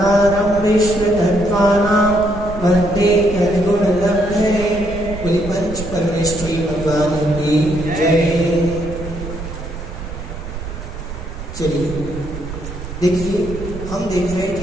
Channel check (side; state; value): right; noise; rumble, 10 dB below the sound